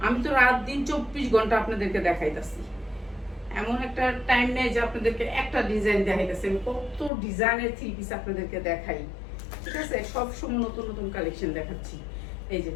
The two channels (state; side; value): drops out; right; at 7.1 s